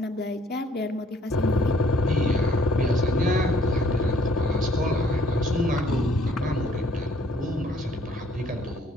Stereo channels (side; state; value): both; normal; correlation 0.62